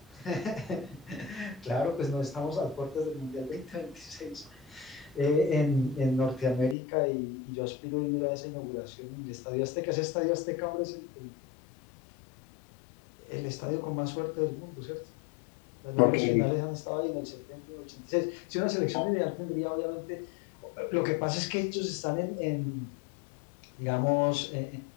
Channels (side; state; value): right; drops out; at 6.8 s